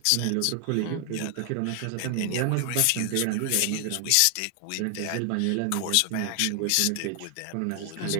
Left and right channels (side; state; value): both; different; correlation 0.00